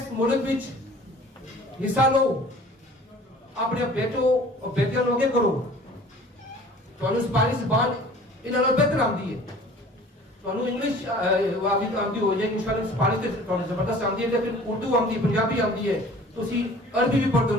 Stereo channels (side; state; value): both; normal; correlation 0.48